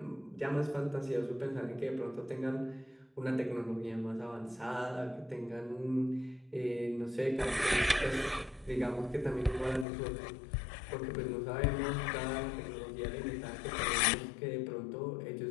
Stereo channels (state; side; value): drops out; right; at 9.9 s